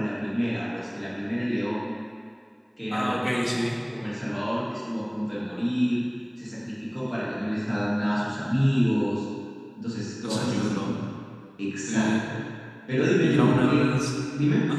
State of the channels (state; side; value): identical; both; correlation 1.00